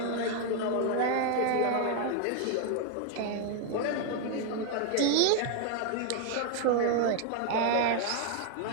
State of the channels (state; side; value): different; both; correlation 0.01